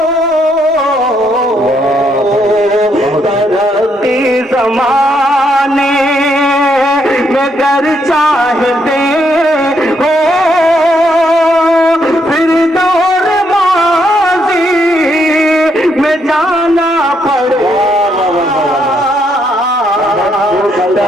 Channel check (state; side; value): normal; both; correlation 0.75